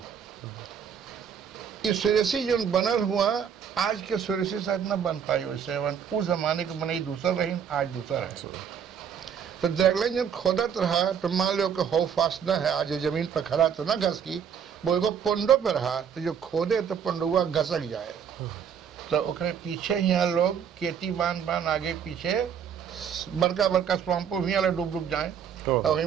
ये सुरेसी जो बनल हुआ आज के सुरेसी शायद न बन पाई वैसे उस जमाने के बनाई दूसरा रही आज दूसरा है तो ड्रैगलाइन जब खोदत रहा तो मान लो कि हो फास्ट न है आज जमीन पर खड़ा तो ना घस की वो एगो पोंडो पे रहा तो जो खोदे तो पोंडुआ घसक जाए तो ओकरे पीछे यहाँ लोग खेती बांध आगे पीछे बड़का बड़का स्वाम्पो भी डूब जाए और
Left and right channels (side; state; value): left; quieter; 7.8 dB